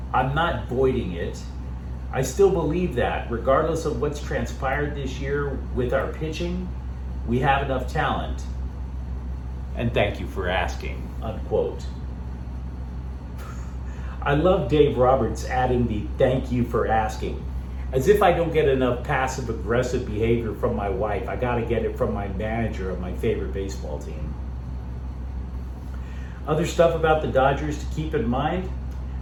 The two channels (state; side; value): identical; both; correlation 1.00